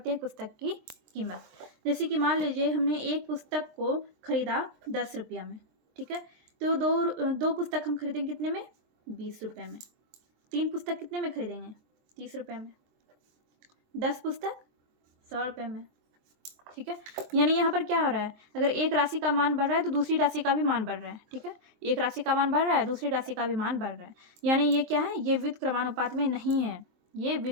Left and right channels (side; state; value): left; late; 23 ms